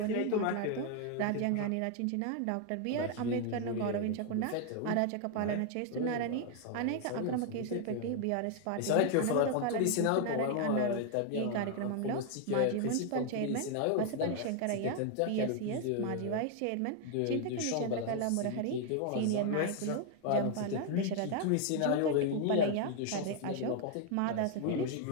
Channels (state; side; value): different; both; correlation 0.00